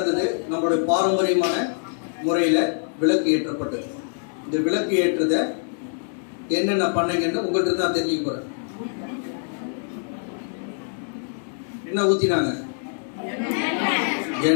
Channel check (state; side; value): silent; right; digital silence